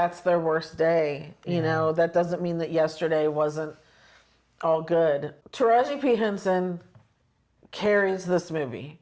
their worst day. That doesn't mean that yesterday wasn't all good. Taraji P. Henson carries this movie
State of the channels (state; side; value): identical; both; correlation 1.00